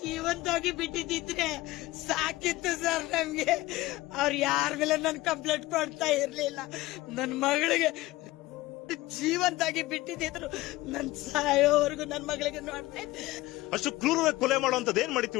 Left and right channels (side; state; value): right; quieter; 18.6 dB